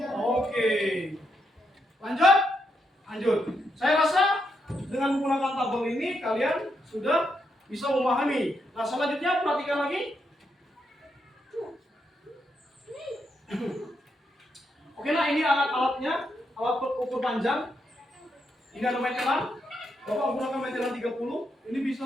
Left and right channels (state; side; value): normal; both; correlation 0.81